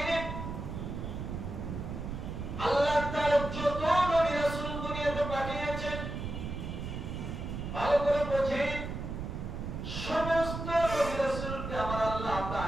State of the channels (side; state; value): right; noise; rumble, 6 dB below the sound